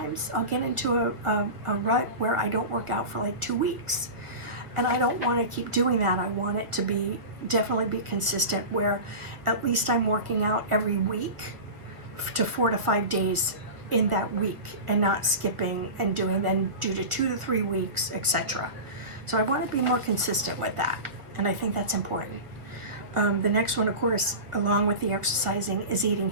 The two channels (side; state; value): left; late; 1.7 ms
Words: I'll get into a rut where I don't work out for like 2 weeks. And I don't want to keep doing that. I want it to definitely be consistent, where at least I'm working out every week to 4 to 5 days in that week, and not skipping and doing then due to 2 to 3 weeks, etc. So I want to be more consistent with that, and I think that's important. The next one, of course, along with the exercising, is eating